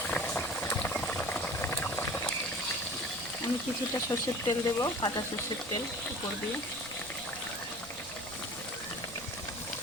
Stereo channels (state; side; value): noise; right; rumble, 19 dB below the sound